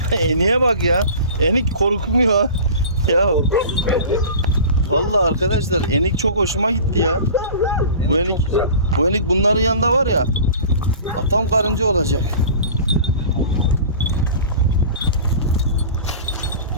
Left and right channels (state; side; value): inverted; both; correlation -0.39